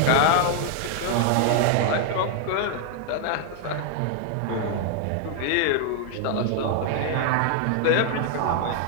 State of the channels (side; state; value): both; different; correlation 0.00